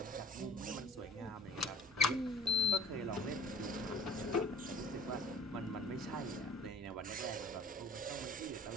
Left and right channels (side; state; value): both; normal; correlation 0.45